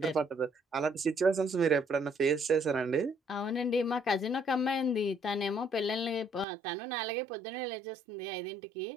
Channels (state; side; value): drops out; left; at 6.5 s